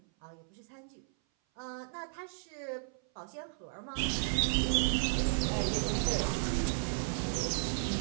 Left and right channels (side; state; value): left; silent; 55 dB below the other